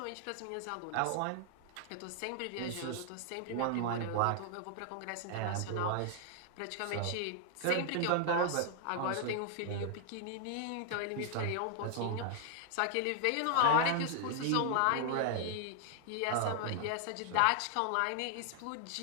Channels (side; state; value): both; different; correlation 0.00